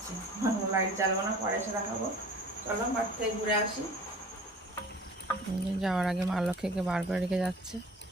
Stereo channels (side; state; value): both; normal; correlation 0.45